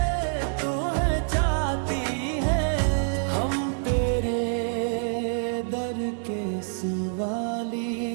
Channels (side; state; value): left; silent; digital silence